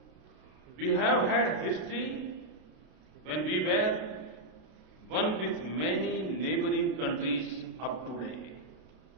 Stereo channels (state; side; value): late; left; 32 ms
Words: we have had history when we were one with many neighboring countries up to today.